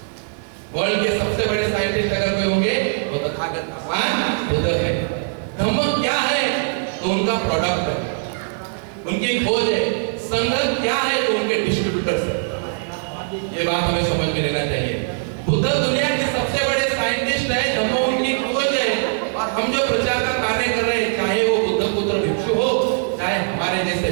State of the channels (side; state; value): left; silent; 59 dB below the other